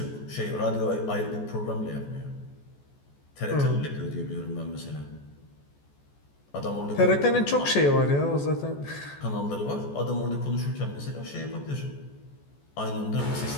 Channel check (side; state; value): right; late; 14 ms